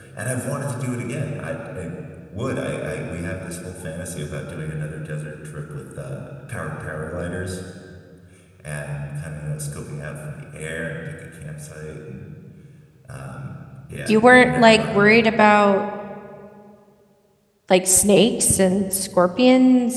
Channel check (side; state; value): both; identical; correlation 1.00